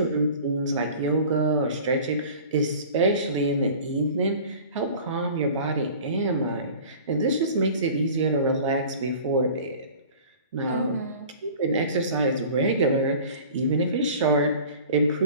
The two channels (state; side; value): inverted; both; correlation -0.43